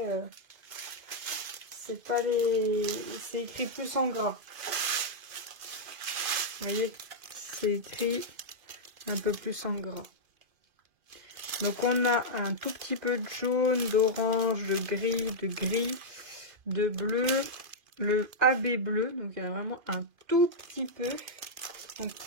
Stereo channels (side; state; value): left; late; 2.5 ms